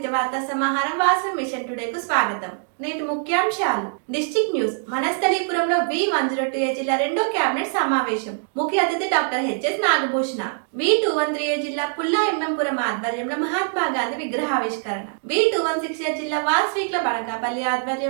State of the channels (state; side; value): silent; left; 63 dB below the other